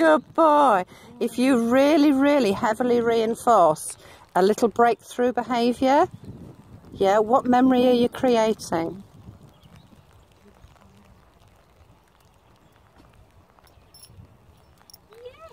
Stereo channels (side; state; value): both; identical; correlation 1.00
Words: boy. If you really, really heavily reinforce a little breakthrough behaviour, yeah, what memory are you creating?